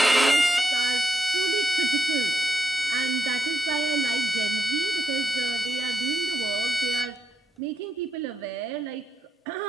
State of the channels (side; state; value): both; normal; correlation 0.84